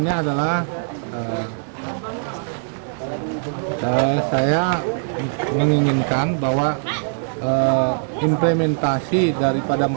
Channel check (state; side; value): silent; left; digital silence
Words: adalah saya menginginkan bahwa implementasi daripada